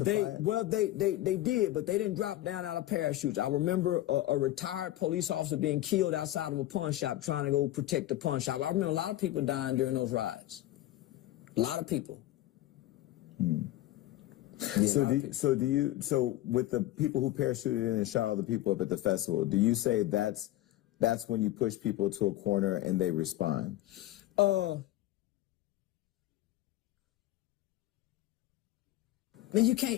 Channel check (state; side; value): quieter; right; 15.0 dB